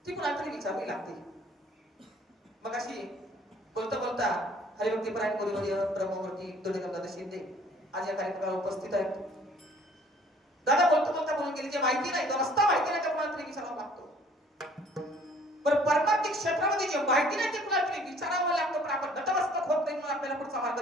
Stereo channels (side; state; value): both; normal; correlation 0.56